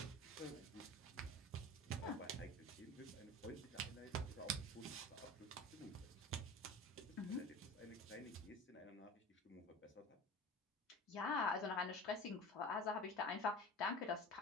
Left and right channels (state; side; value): normal; both; correlation 0.36